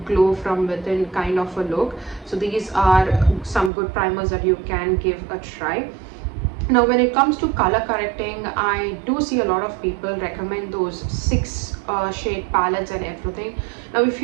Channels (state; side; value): drops out; left; at 3.7 s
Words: glow from within kind of a look. So these are some good primers that you can give a try. Now when it comes to color correcting, I do see a lot of people recommend those 6 shade palettes and everything. Now if